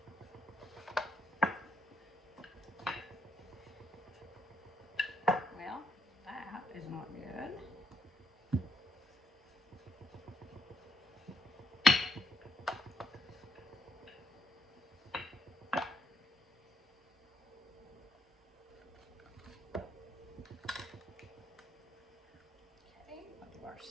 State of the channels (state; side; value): normal; both; correlation 0.74